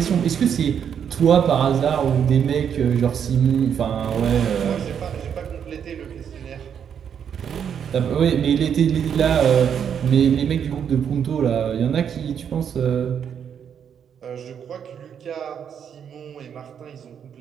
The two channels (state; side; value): quieter; left; 8.1 dB